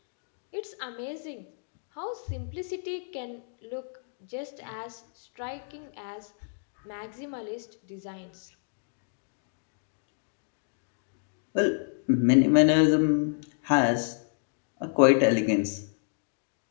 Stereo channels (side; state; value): right; silent; digital silence